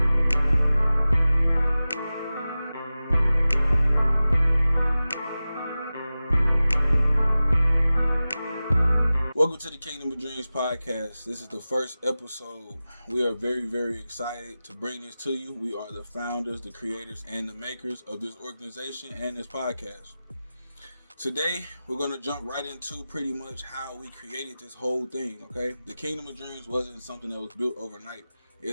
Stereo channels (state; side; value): inverted; both; correlation -0.96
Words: to the Kingdom of Dreams podcast. This is the first episode. We are very, very excited to bring this to you. We are the founders, the creators, and the makers of this organization and this podcast. Today, we're going to jump right into pretty much how we created this whole thing, okay? The Kingdom of Dreams wasn't something that was built overnight.